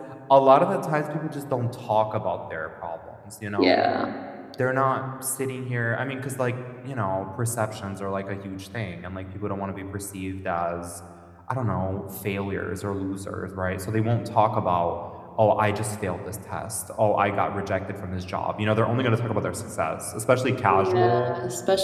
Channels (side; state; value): both; identical; correlation 1.00